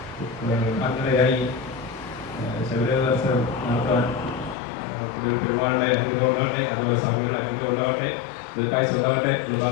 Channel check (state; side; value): drops out; right; at 4.5 s